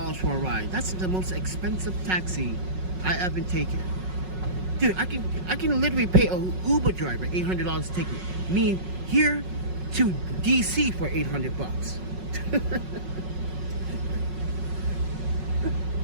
for a ride? That's the most expensive taxi I ever taken. Dude, I can literally pay an Uber driver $800 to take me here to DC for $800 bucks.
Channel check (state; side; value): late; left; 5.4 ms